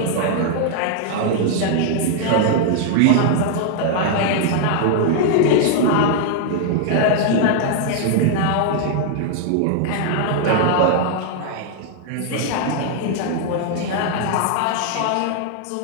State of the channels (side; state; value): both; different; correlation -0.01